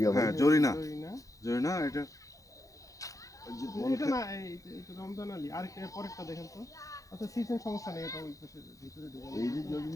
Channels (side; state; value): right; late; 0.16 ms